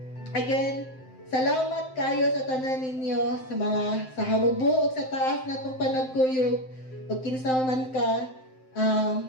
again, salamat kayo sa tanan ninyo, sa mga, sa hamubo, o sa taas na itong panagkuyog, o kinsa man ka.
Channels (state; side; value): late; right; 7.7 ms